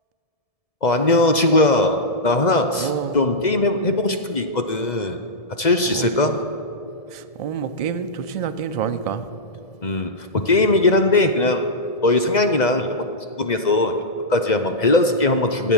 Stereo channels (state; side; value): late; right; 2.0 ms